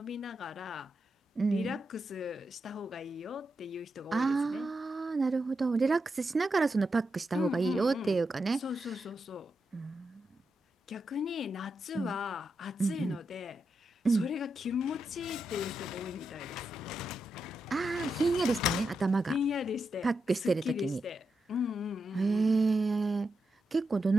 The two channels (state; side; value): normal; both; correlation 0.86